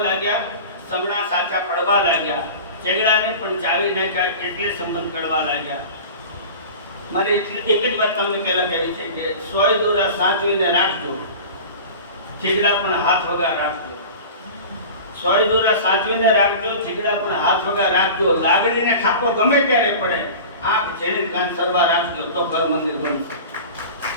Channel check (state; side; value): inverted; both; correlation -0.36